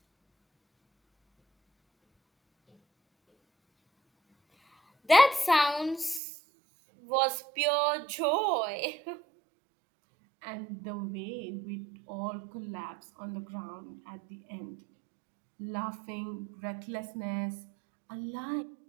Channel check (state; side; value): drops out; left; at 6.2 s